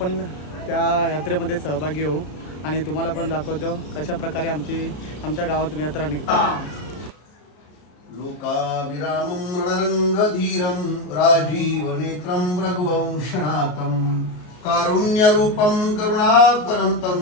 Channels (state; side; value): late; right; 33 ms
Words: त्या यात्रेमध्ये सहभागी होऊ आणि तुम्हाला पण दाखवतो कशा प्रकारे आमच्या गावातून यात्रा निघते। लोकाविरामं रणरंगधीरं राजीवनेत्रं रघुवंशनाथं कारुण्यरूपं करुणाकरन्तं